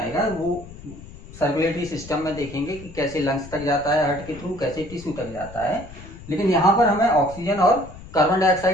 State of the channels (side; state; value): left; noise; rumble, 16 dB below the sound